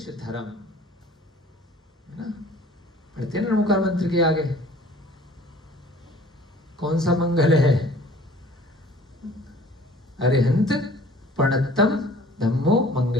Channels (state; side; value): normal; both; correlation 0.51